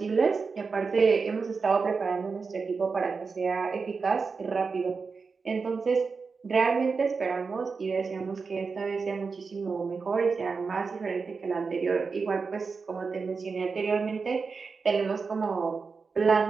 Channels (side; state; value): left; quieter; 4.8 dB